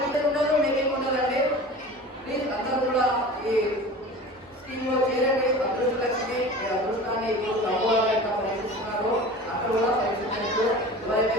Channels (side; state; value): both; normal; correlation 0.37